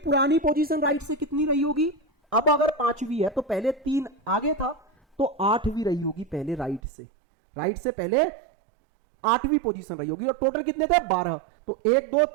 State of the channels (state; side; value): drops out; left; at 6.8 s